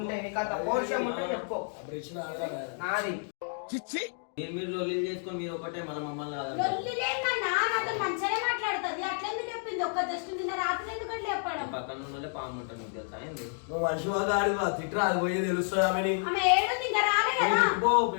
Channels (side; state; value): right; silent; 58 dB below the other